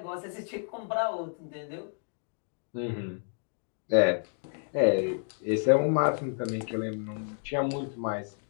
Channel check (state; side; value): silent; right; 57 dB below the other